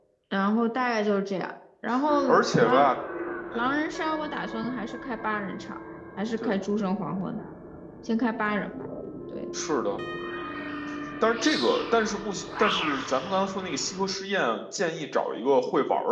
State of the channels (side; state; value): both; identical; correlation 1.00